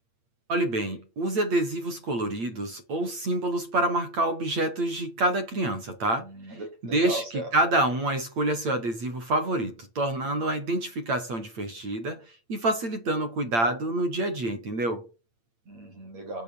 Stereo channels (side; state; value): left; late; 8.7 ms